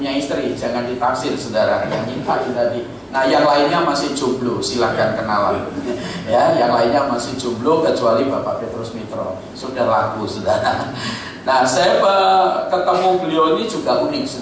istri, jangan ditaksir, saudara, yang nyimpain tadi. Nah, yang lainnya masih jomblo, silahkan kenalan. Ya, yang lainnya masih jomblo kecuali Bapak Petrus Mitro, sudah laku, saudara. Nah, saya ketemu beliau ini juga unik,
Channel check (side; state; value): both; identical; correlation 1.00